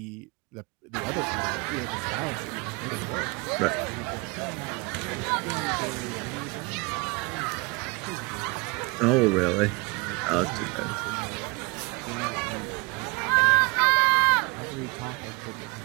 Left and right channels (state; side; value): quieter; left; 27.5 dB